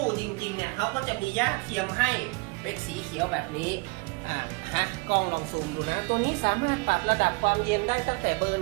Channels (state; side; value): quieter; left; 28.7 dB